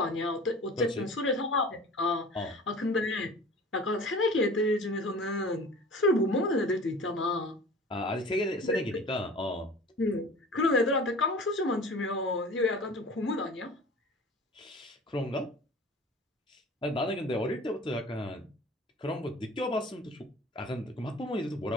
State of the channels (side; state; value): both; normal; correlation 0.42